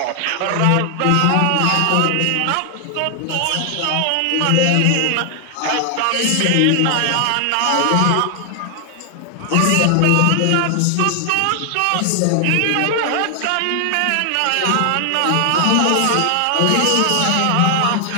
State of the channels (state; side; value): different; both; correlation 0.00